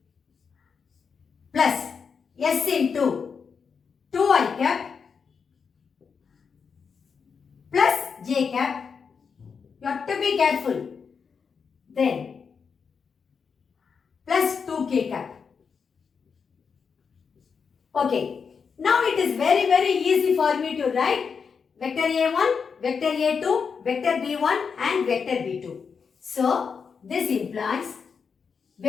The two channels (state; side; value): quieter; right; 5.9 dB